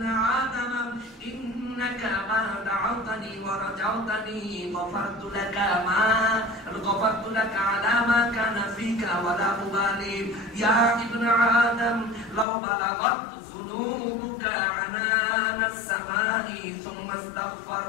آدم إنك ما دعوتني ورجوتني غفرت لك على ما كان فيك ولا أبالي يا ابن آدم لو بلغت ذنوبك عنان السماء ثم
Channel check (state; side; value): drops out; right; at 12.5 s